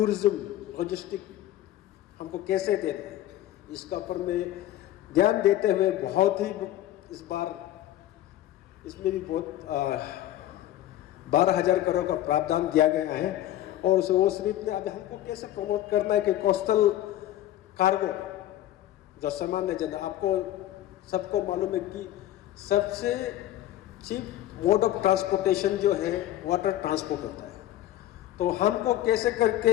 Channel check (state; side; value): quieter; right; 13.6 dB